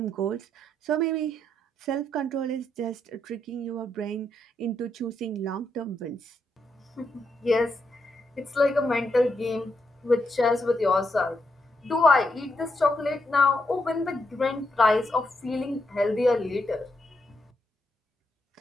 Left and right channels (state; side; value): normal; both; correlation 0.80